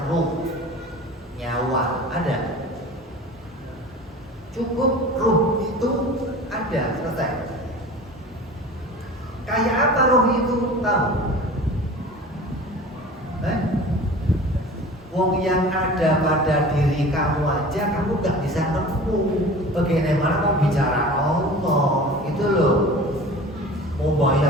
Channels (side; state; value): both; normal; correlation 0.39